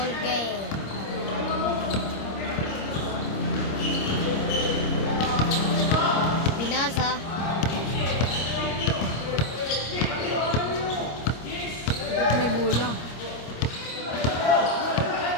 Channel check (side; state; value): right; late; 26 ms